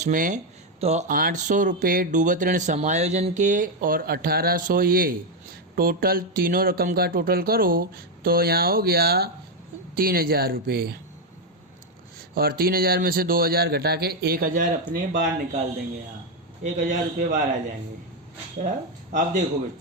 तो 800 रुपये डूबत ऋण समायोजन के और 1800 ये टोटल, तीनों रकम का टोटल करो तो यहाँ हो गया 3000 रुपये, और 3000 में से 2000 घटा के 1000 अपने बाहर निकाल देंगे। यहाँ 1000 रुपये बाहर आ जाएंगे। अब देखो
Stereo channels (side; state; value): both; normal; correlation 0.05